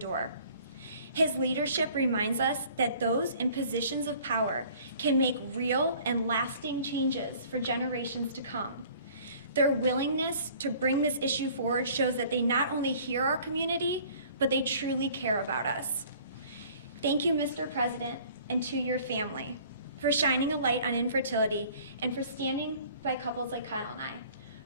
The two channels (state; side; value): inverted; both; correlation -0.52